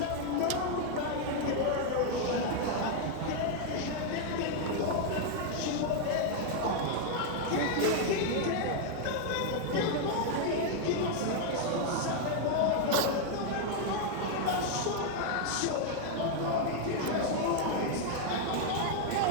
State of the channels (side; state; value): both; different; correlation 0.00